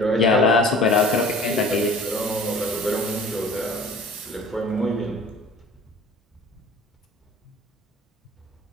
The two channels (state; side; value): normal; both; correlation 0.46